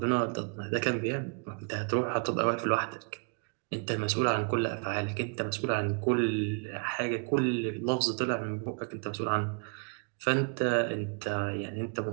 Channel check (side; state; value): left; quieter; 37.1 dB